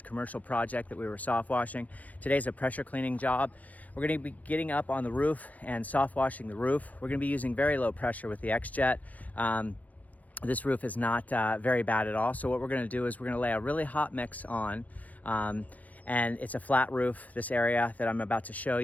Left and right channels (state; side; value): late; right; 0.072 ms